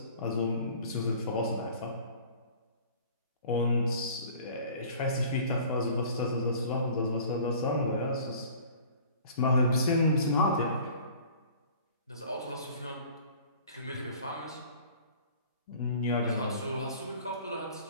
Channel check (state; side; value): inverted; both; correlation -0.47